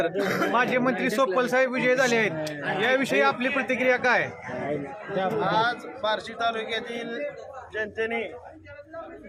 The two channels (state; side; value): identical; both; correlation 1.00